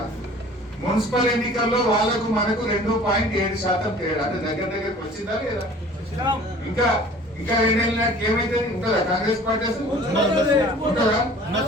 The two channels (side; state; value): both; normal; correlation 0.47